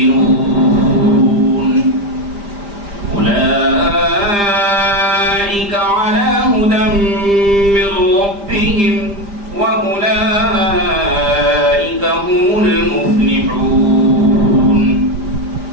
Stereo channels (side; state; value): left; late; 5.0 ms